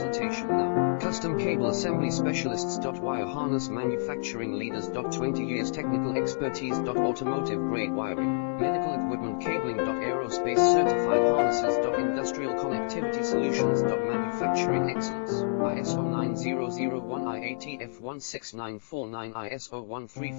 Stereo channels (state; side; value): silent; right; digital silence